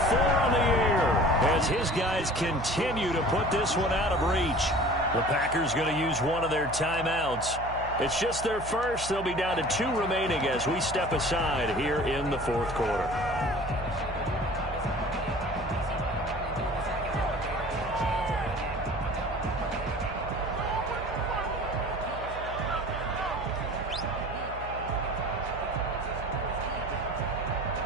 on the year, as his guys continue to put this one out of reach. The Packers going to use one of their timeouts. It's just their first. They'll be down to 2 remaining as we step aside here in the 4th quarter.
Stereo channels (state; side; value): noise; right; hum, 11 dB below the sound